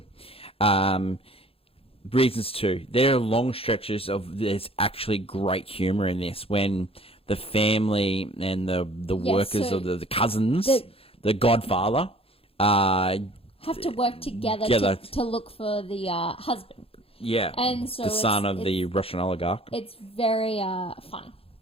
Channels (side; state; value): right; late; 0.27 ms